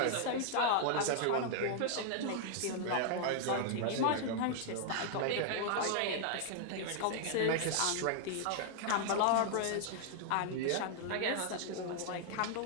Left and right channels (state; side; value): different; both; correlation -0.01